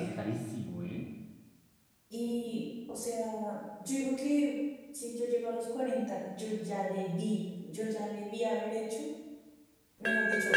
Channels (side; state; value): both; identical; correlation 1.00